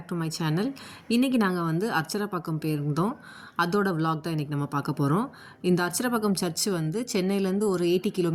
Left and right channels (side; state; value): both; identical; correlation 1.00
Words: to my channel. இன்றைக்கி நாங்கள் வந்து அர்ச்சரப்பாக்கம் போயிருந்தோம். அதோட விலாக் தான் இன்றைக்கி நம்ம பார்க்க போகிறோம். இந்த அர்ச்சரப்பாக்கம் சர்ச்சு வந்து சென்னையிலேருந்து ஒரு 80